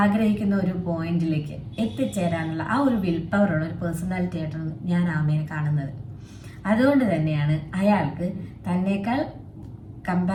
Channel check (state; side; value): identical; both; correlation 1.00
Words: ഒരു പോയിന്റിലേക്ക് എത്തിച്ചേരാനുള്ള ആ ഒരു വിൽ പവറുള്ള ഒരു പേഴ്സണാലിറ്റി ആയിട്ടാണ് ഞാൻ ആമയെ കാണുന്നത്. അതുകൊണ്ട് തന്നെയാണ് അയാൾക്ക് തന്നേക്കാൾ